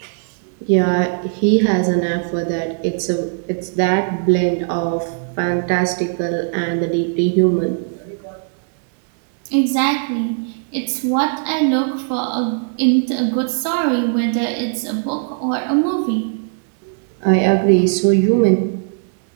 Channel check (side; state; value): left; silent; digital silence